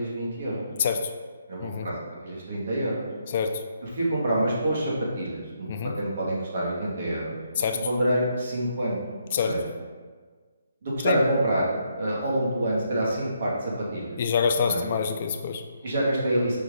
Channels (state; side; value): inverted; both; correlation -0.75